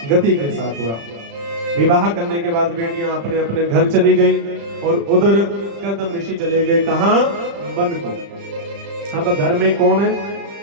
गति के साथ हुआ। विवाह करने के बाद बेटियां अपने अपने घर चली गई और उधर कदम ऋषि चले गए कहां? वन को। अब घर में कौन है?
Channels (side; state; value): left; late; 35 ms